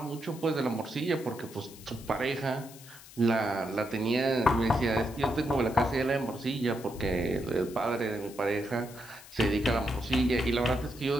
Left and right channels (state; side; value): noise; left; hiss, 19 dB below the sound